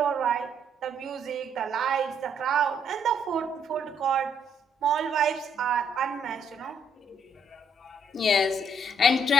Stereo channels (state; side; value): normal; both; correlation 0.70